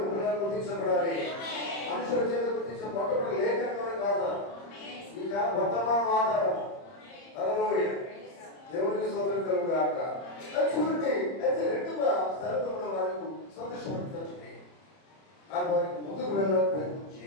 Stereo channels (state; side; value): late; right; 30 ms